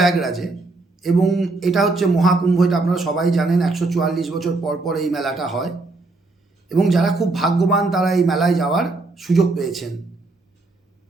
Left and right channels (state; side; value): quieter; left; 3.3 dB